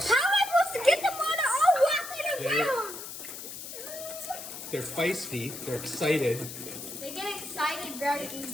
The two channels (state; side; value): noise; left; hiss, 10 dB below the sound